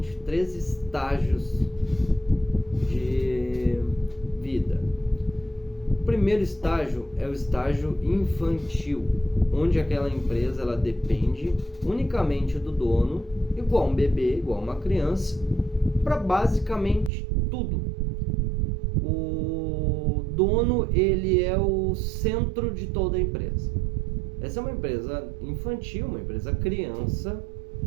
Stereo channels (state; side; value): drops out; left; at 17.1 s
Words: 3 estágios de vida. O primeiro estágio é o estágio infantil, onde aquela empresa ela depende unicamente do dono, igual um bebê, igual uma criança, para basicamente tudo. O dono, ele é o centro de toda a empresa. Essa é uma empresa infantil, uma empresa criança,